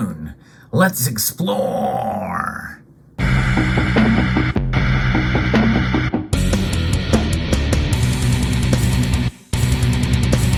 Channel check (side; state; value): both; identical; correlation 1.00